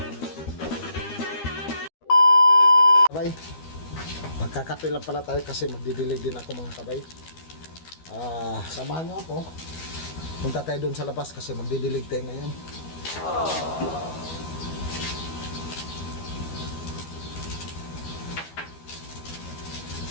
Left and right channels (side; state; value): right; late; 12 ms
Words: Kabay, magkakape lang pala tayo kasi magdidilig din ako mga kabay. Samahan nyo ako. Punta tayo doon sa labas kasi magdidilig tayo ngayon.